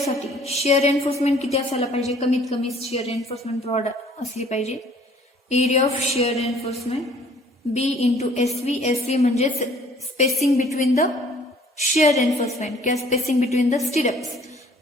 शिअर रेन्फोर्समेंट किती असायला पाहिजे? कमीत कमी शिअर रेन्फोर्समेंट प्रोव्हाइड असली पाहिजे. Area of shear reinforcement B into SV. SV म्हणजे spacing between the shear reinforcement किंवा spacing between the stirrups.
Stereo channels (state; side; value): normal; both; correlation 0.56